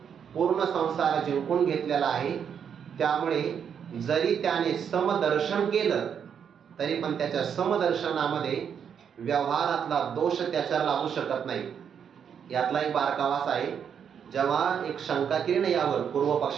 पूर्ण संसार जिंकून घेतलेला आहे. त्यामुळे जरी त्याने समदर्शन केलं तरी पण त्याच्या समदर्शनामध्ये व्यवहारातला दोष त्याच्यावर लागू शकत नाही. यातला एक बारकावास आहे. जेव्हा एक शंका केली ना यावर पूर्व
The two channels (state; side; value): quieter; left; 7.7 dB